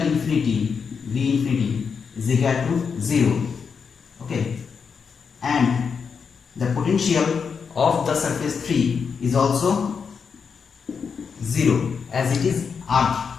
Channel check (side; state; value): right; quieter; 6.0 dB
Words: infinity, V infinity, is equal to 0. Okay. And the potential of the surface 3 is also 0 as it is earth.